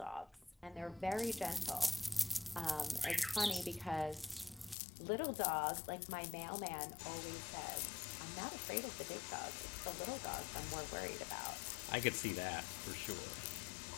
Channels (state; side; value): drops out; right; at 4.8 s